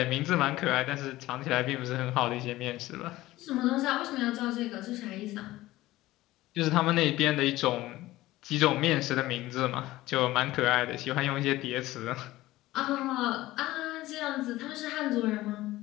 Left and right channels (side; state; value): right; quieter; 17.1 dB